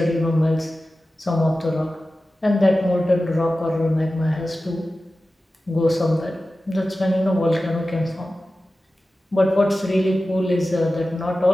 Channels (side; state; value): both; normal; correlation 0.95